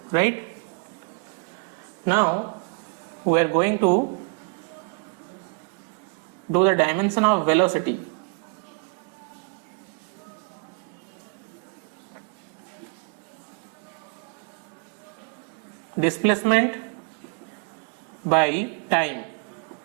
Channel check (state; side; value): quieter; left; 36.1 dB